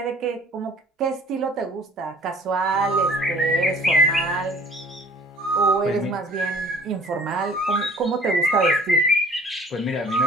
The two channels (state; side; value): normal; both; correlation 0.51